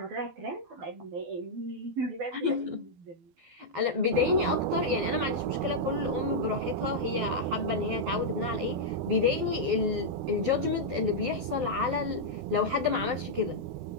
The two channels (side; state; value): left; late; 12 ms